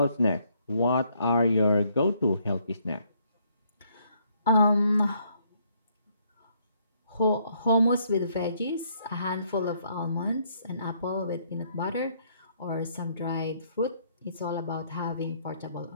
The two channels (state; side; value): inverted; both; correlation -0.69